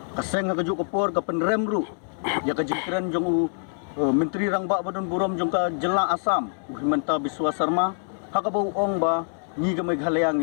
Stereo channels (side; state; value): right; silent; digital silence